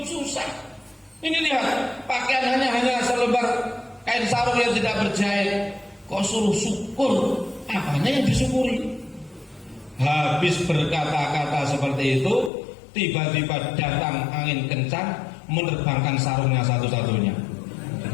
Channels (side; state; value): right; drops out; at 12.5 s